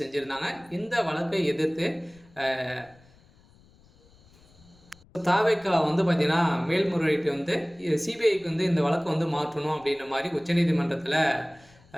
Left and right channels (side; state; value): left; noise; rumble, 28 dB below the sound